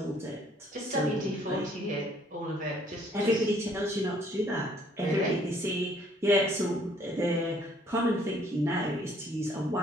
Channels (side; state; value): both; normal; correlation 0.62